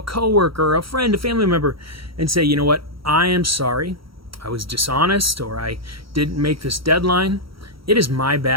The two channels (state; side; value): late; left; 0.75 ms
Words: coworker, a friend, a family member, and say, you know what, I am sorry. I was dishonest, or I didn't make this deadline. It is my